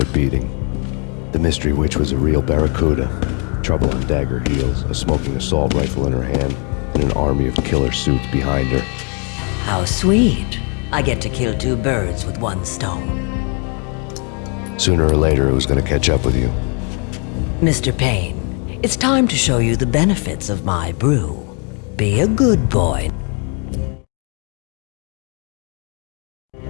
beating. The mystery witch was a real barracuda. Trouble on dagger heels, a smoking assault rifle in her hand, and an army of killer suits behind her. How sweet. I get to kill two birds with one stone. Sooner or later, it was going to catch up with you. Mr. Payne, it's time to show you the benefits of my brew. Be a good boy.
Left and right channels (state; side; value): quieter; right; 37.1 dB